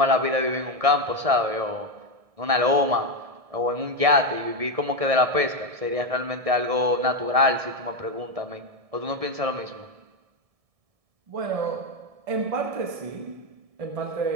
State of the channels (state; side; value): late; left; 1.7 ms